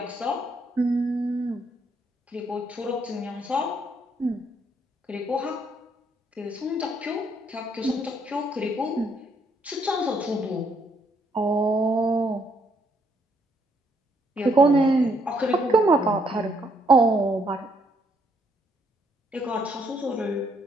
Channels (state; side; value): normal; both; correlation 0.71